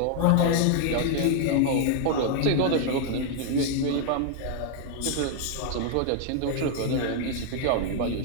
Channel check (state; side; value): different; both; correlation 0.00